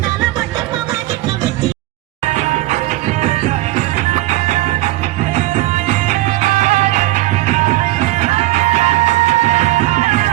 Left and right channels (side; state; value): left; quieter; 17.4 dB